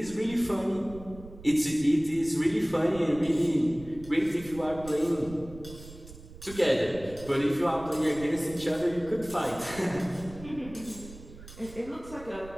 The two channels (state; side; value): noise; right; rumble, 17 dB below the sound